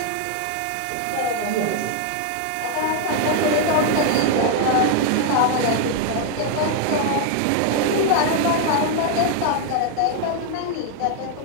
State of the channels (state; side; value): different; both; correlation 0.00